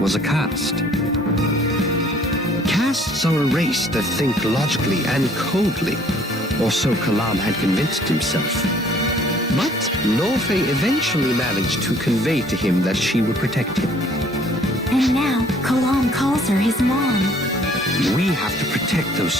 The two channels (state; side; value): normal; both; correlation 0.58